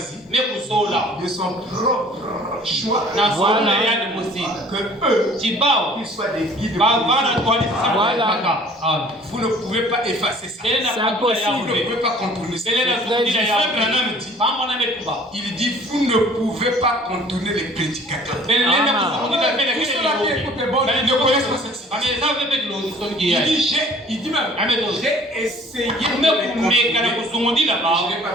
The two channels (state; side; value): normal; both; correlation 0.51